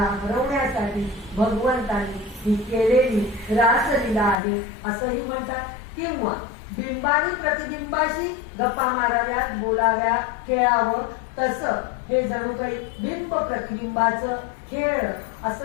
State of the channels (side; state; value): right; drops out; at 4.4 s